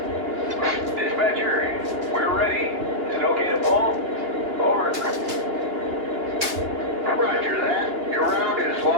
Dispatcher, we're ready. Is it okay to pull? Over. Roger that. Your round is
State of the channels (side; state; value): left; late; 2.8 ms